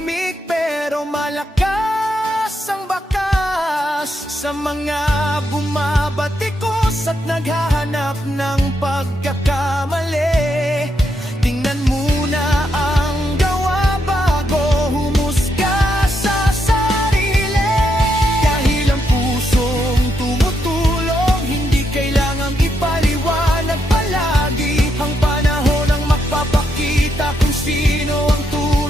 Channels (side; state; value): both; normal; correlation 0.80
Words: pero malakas ang bakas sa mga bumabatikos at naghahanap ng pagkakamali. Tingnan muna ang gawa bago humusga sa sarili, dahil ang pusong tumutulong hindi kailangang ipaliwanag palagi. Ang panahon ang magpapakita kung